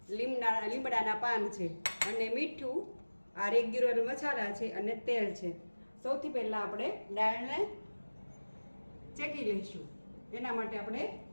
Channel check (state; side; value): inverted; both; correlation -1.00